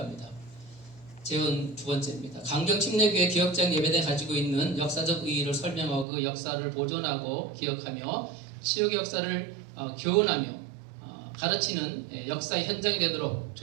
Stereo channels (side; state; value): left; drops out; at 6.1 s